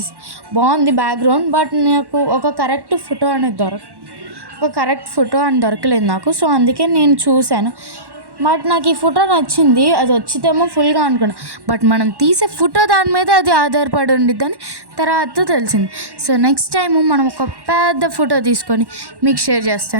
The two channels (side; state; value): left; late; 1.1 ms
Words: బాగుంది బ్యాక్గ్రౌండ్, బట్ నాకు ఒక కరెక్ట్ ఫోటో అని దొరకలేదు నాకు. సో అందుకే నేను చూశాను, బట్ నాకు ఈ ఫోటో నచ్చింది. అది వచ్చితేమో ఫుల్గా అనుకున్నా, బట్ మనం తీసే ఫోటో దాని మీద అది ఆధారపడి ఉండిద్దని తర్వాత తెలిసింది. సో నెక్స్ట్ టైం మనం ఒక పెద్ద ఫోటో తీసుకొని మీకు షేర్